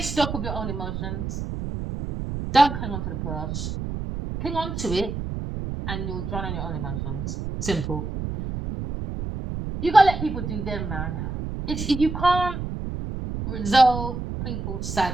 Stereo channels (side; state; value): right; noise; rumble, 5 dB below the sound